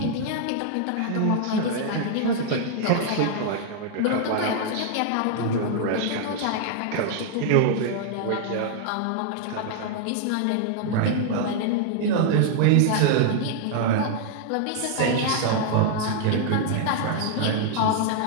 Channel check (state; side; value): different; both; correlation -0.01